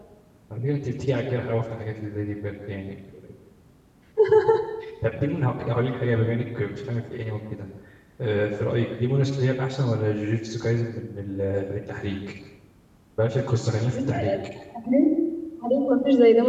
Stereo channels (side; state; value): both; identical; correlation 1.00